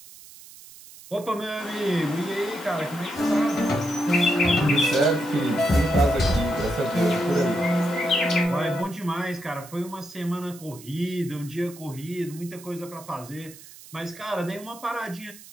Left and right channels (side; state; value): right; noise; hiss, 19 dB below the sound